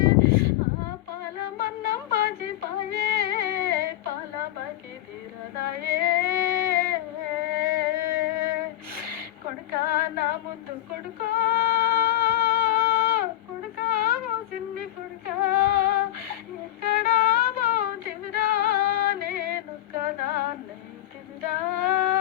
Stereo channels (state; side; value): quieter; right; 14.1 dB